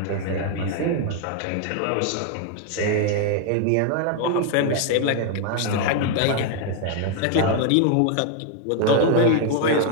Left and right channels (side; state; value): both; different; correlation 0.00